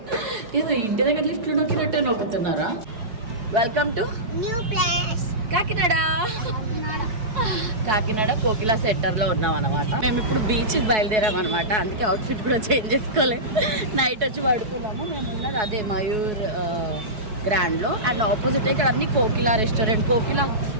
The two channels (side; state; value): left; late; 4.6 ms